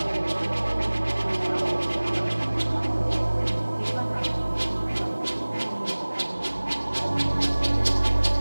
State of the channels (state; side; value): inverted; both; correlation -1.00